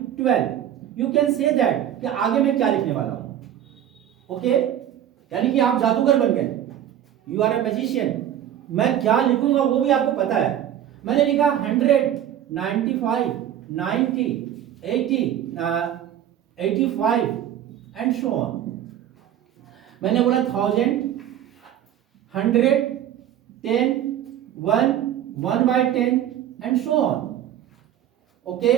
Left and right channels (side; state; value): left; quieter; 10.8 dB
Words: 12, यू कैन से दैट कि आगे मैं क्या लिखने वाला हूं। ओके, यानी कि आप जादूगर बन गए, यू आर अ मैजिशियन। मैं क्या लिखूंगा वो भी आपको पता है। मैंने लिखा 100, 95, 90, 80, 85 एंड सो ऑन। मैंने बोला 1000, 100, 10, 1, 1/10 एंड सो ऑन। ओके,